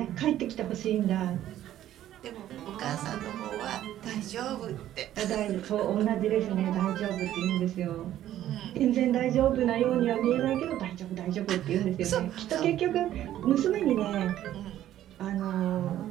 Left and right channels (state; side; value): quieter; left; 12.5 dB